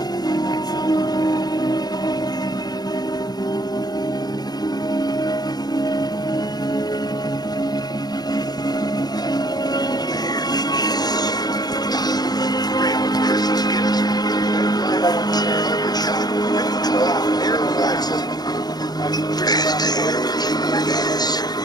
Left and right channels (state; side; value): late; right; 0.19 ms